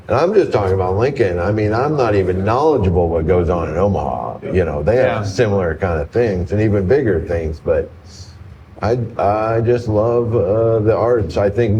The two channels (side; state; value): both; identical; correlation 1.00